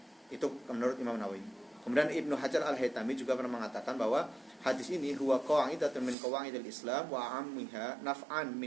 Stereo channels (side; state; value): left; drops out; at 6.2 s